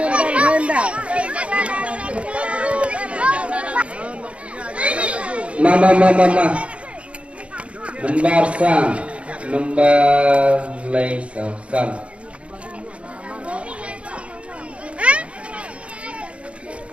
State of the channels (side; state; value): left; late; 0.061 ms